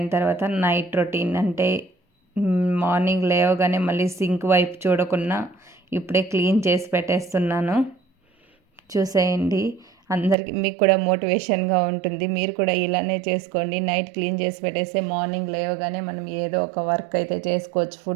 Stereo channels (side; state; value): left; drops out; at 10.4 s